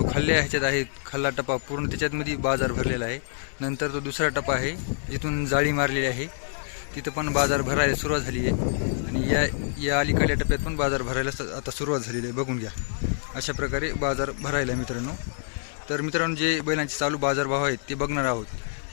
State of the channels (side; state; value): right; silent; digital silence